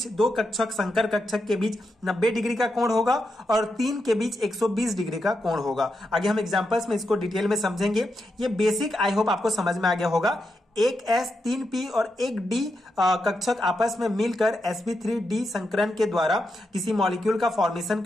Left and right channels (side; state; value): both; normal; correlation 0.85